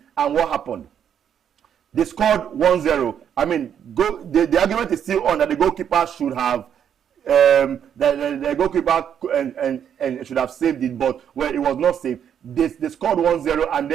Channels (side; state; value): left; quieter; 8.8 dB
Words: and what happened? They scored 1-0. I mean, the argument is still on that the goalkeeper should have the goalkeeper and should have saved it, but well, it was not saved. They scored 1-0, and